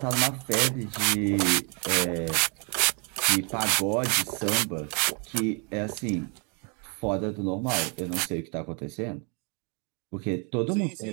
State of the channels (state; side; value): quieter; left; 35.4 dB